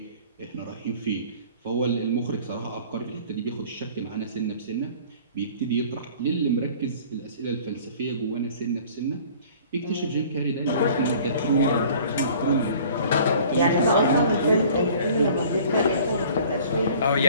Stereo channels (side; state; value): both; inverted; correlation -0.49